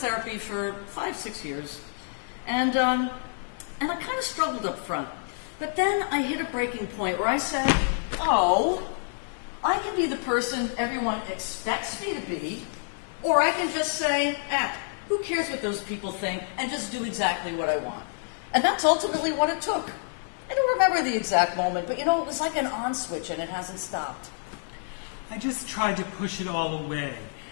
for 5-6 years, and I kind of struggled up front. But then I hit a breaking point where I said, oh, I can be the person everyone expects me to be, or I can just say, who cares what those people think, and just do exactly what I want. And that's ultimately what it took. I don't remember the exact moment, but you know, it was like an on switch and it hasn't stopped. I just tried to push it all away.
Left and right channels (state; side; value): silent; right; digital silence